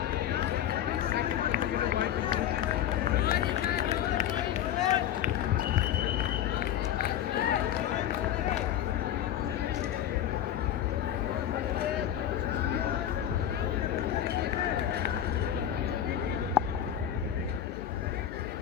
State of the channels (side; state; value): right; quieter; 10.7 dB